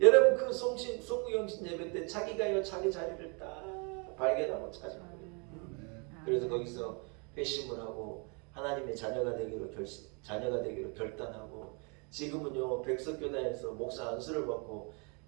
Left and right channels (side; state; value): left; quieter; 34.5 dB